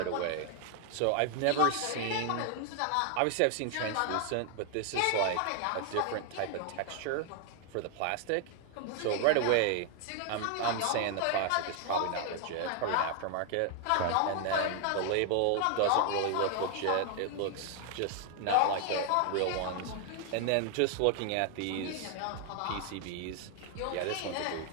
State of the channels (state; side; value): different; both; correlation 0.00